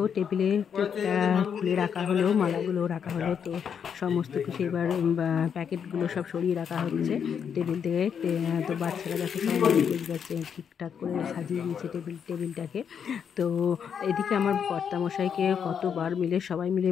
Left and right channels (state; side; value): quieter; right; 7.5 dB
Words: টেবিলে কেকটা খুলে রাখা হলো, মালাগুলো রাখা হলো। তো সমস্ত কিছু এবার প্যাকেটগুলো সব সরিয়ে রাখা হচ্ছে টেবিল থেকে। তো বাচ্চারা দেখো সবাই যাচ্ছে, ঠিকঠাক করে সাজিয়ে দিয়েছে টেবিলটাকে। তো এদিকে আমার কর্তামশাইকে কতবার মিলে সবাই মিলে